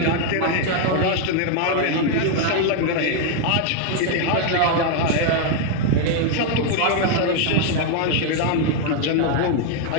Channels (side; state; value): both; different; correlation 0.00